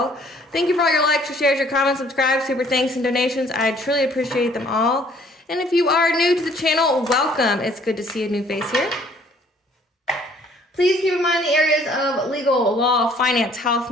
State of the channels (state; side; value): normal; both; correlation 0.59